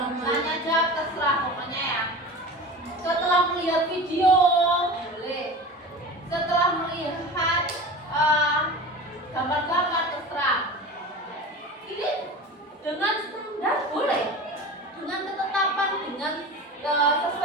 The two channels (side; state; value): both; normal; correlation 0.33